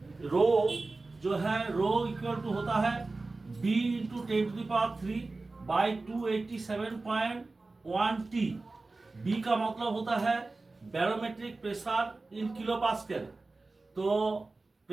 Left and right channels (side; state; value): left; quieter; 3.4 dB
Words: रो जो है, रो इक्वल टू होता है b into 10⁻³ by 287.1 t। b का मतलब होता है barometric pressure in kilo pascal. तो